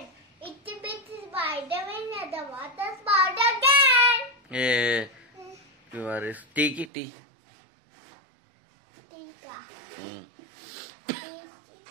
Itsy bitsy spider. When the water spout again. టీకి టీ టీకా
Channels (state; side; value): drops out; left; at 6.9 s